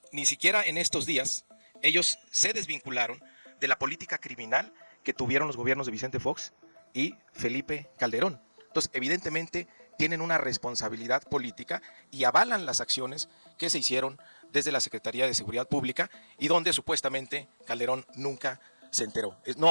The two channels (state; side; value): inverted; both; correlation -1.00